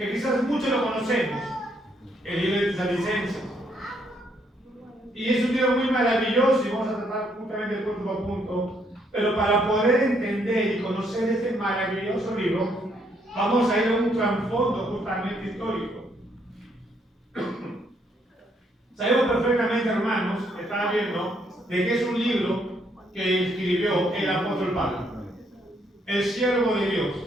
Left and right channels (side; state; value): both; normal; correlation 0.71